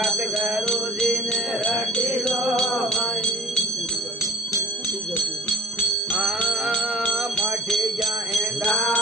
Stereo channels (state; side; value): normal; both; correlation 0.45